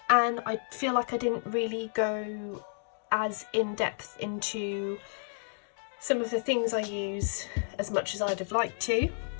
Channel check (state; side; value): silent; right; digital silence